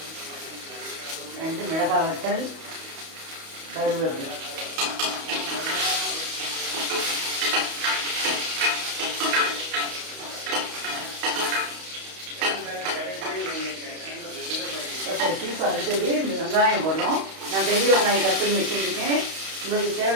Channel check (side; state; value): left; late; 31 ms